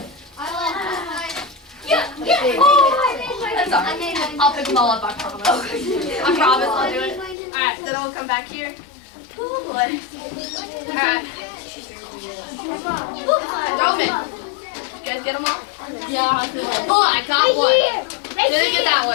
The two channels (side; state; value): right; drops out; at 7.4 s